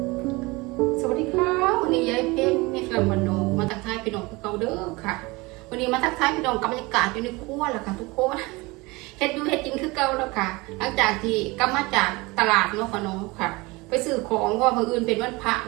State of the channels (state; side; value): quieter; left; 23.8 dB